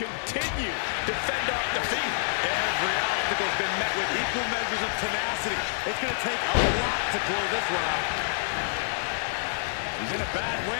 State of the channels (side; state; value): right; silent; 60 dB below the other